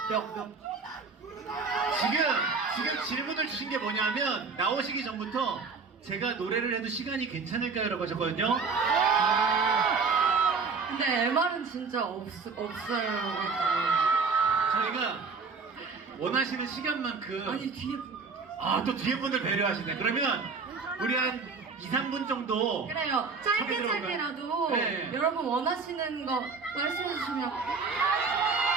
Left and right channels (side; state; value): left; quieter; 4.8 dB